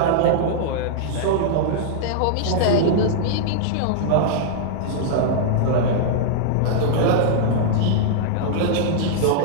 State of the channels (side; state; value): both; different; correlation -0.01